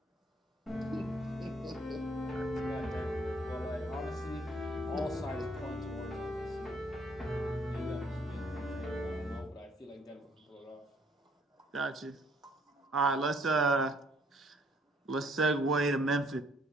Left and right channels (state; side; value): normal; both; correlation 0.64